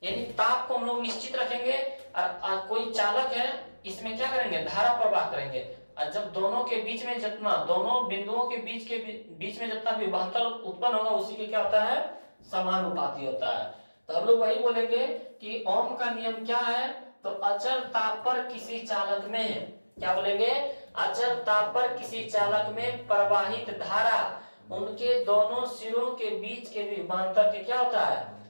यानी ताप को हम लोग निश्चित रखेंगे और कोई चालक है, इसमें क्या करेंगे, धारा प्रवाह करेंगे। और जब दोनों के बीच में जितना, दोनों बिंदुओं के बीच में जितना विभवांतर उत्पन्न होगा, उसी के क्या होता है, समानुपाती होता है। तो हम लोग वही बोलेंगे कि ओम का नियम क्या है, तो अचर ताप पर किसी चालक में, क्या बोलेंगे, अचर ताप पर किसी चालक में प्रवाहित धारा उनके दोनों सिरों के बीच के विभवांतर के क्या होता है,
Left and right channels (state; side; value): inverted; both; correlation -1.00